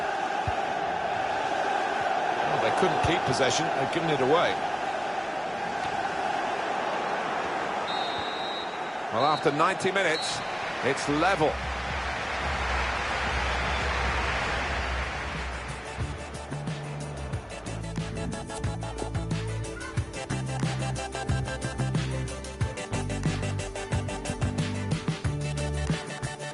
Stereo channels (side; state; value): both; identical; correlation 1.00